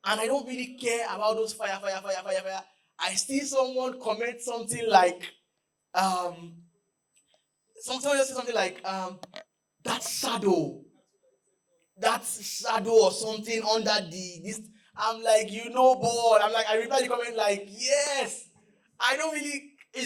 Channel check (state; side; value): identical; both; correlation 1.00